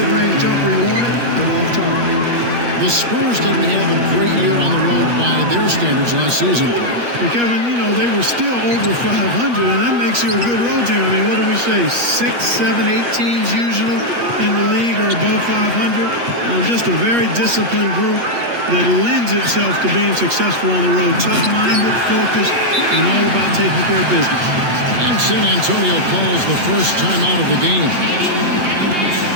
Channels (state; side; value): late; left; 8.4 ms